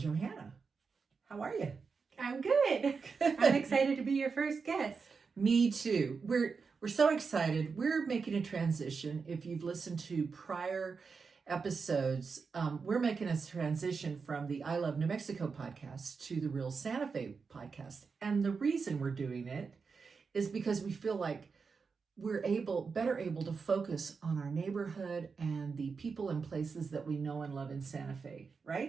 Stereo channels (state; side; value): quieter; left; 5.1 dB